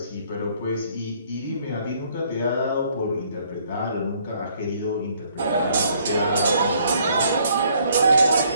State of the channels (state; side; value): inverted; both; correlation -0.65